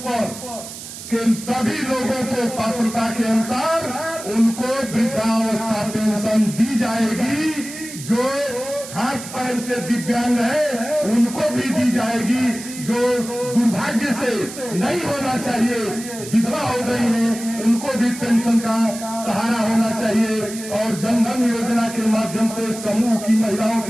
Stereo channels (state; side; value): noise; right; hiss, 12 dB below the sound